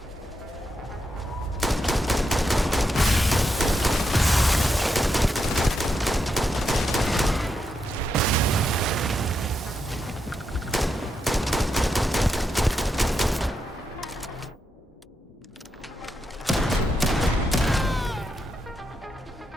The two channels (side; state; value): both; normal; correlation 0.83